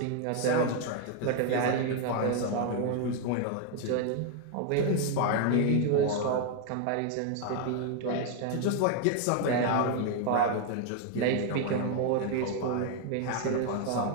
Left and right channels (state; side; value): different; both; correlation 0.01